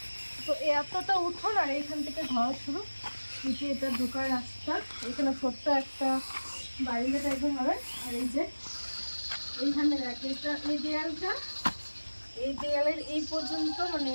তো এতটা উঠোন আর এইখান থেকে ঘর শুরু। নিচে এটা ঢোকার রাস্তা, এখানে ছোট্ট একটা বাড়িটা টাইপের হবে। আর এই যে এইখানে দেখে এটা এই দেয়ালটা, এই দেয়ালের এই পর্যন্ত মানে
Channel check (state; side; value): inverted; both; correlation -1.00